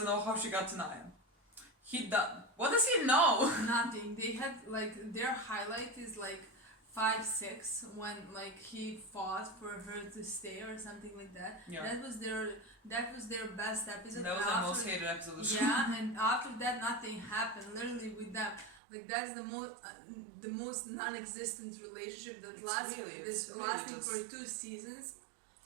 know how she got to Nyan. What does he know? Nothing. They had like their highlight is like 5-6 when like he fought for her to stay or something like that. Yeah. That was their best episode. That was the most hated episode of the show. Yeah, and after that nothing happened. Literally with them. Like that's the most non-existent relationship that lasting for 2 seasons.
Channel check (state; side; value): drops out; left; at 18.8 s